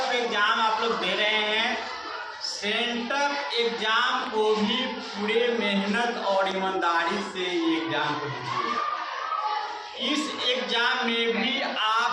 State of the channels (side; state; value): both; identical; correlation 1.00